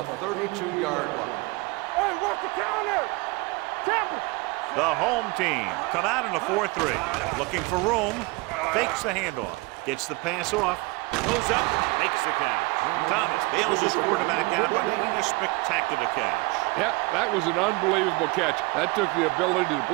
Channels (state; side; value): quieter; left; 25.3 dB